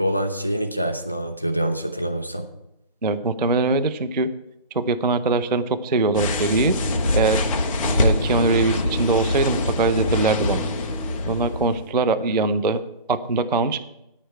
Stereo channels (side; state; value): both; inverted; correlation -0.34